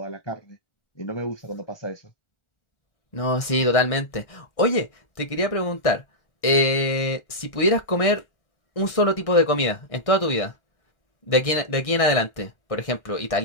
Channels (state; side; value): late; right; 1.6 ms